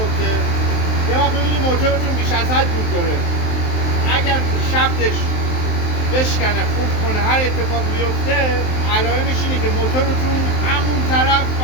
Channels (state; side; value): late; right; 23 ms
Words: یه وقت ببینید موتورتون بیش از حد دود داره، اگر شفتش بشکنه، خورد کنه، هر اتفاق بیفته، علائمش اینه که موتورتون همون طرف